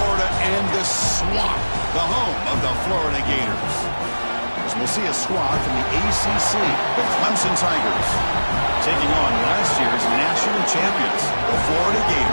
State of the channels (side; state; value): both; inverted; correlation -1.00